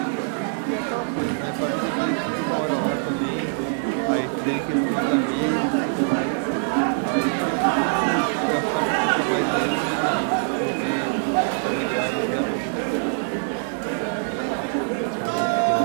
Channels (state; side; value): silent; left; 63 dB below the other